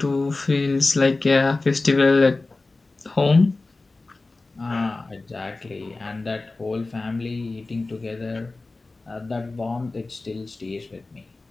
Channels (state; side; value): quieter; right; 3.4 dB